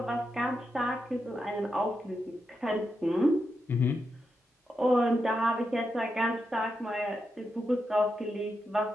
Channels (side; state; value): both; normal; correlation 0.86